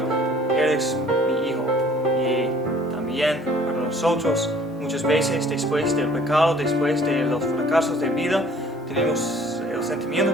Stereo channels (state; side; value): normal; both; correlation 0.54